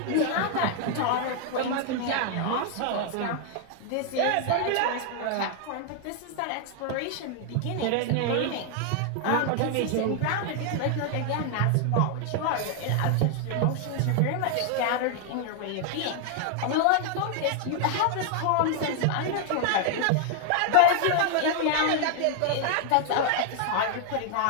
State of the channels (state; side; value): different; both; correlation 0.00